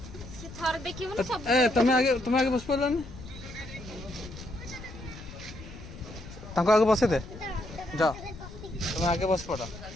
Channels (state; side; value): noise; left; rumble, 14 dB below the sound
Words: तुम आगे बस पारानी आगे बसे दे जा तुम आगे बस पड़